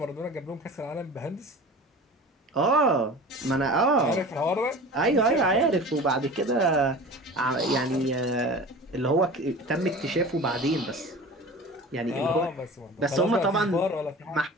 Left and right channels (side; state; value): both; normal; correlation 0.37